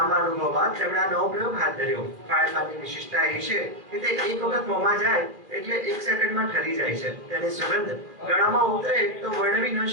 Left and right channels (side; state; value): left; late; 2.5 ms